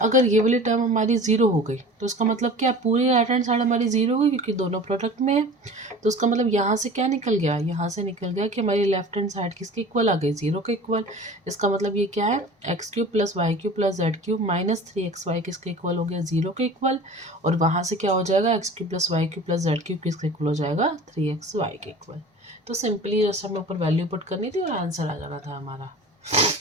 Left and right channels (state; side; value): normal; both; correlation 0.40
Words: अगर ये वाली टर्म हमारी 0 हो गई तो इसका मतलब क्या, पूरी राइट हैंड साइड हमारी 0 हो गई क्योंकि दोनों प्रोडक्ट में है। तो उसका मतलब यहाँ से क्या निकल गया, यहाँ से निकल गया कि हमारी लेफ्ट हैंड साइड किसके इक्वल आ गई, 0 के इक्वल। इसका मतलब ये क्या है, x cube plus y cube plus z cube minus 3xy किसके इक्वल हो गया, 0 के इक्वल। और वहाँ से क्या हो जाएगा, x cube plus y cube plus z cube किसके इक्वल हो जाएगा, 3xy के इक्वल। तो सिंपली जस्ट हमें ऊपर वैल्यू पुट करनी थी और आंसर आ जाना था हमारा।